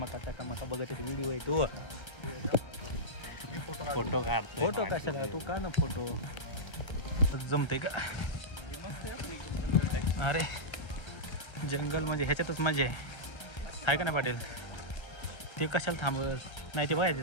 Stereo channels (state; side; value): late; right; 1.3 ms